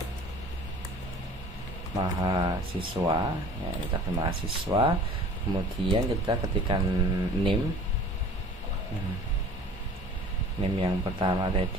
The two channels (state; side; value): normal; both; correlation 0.46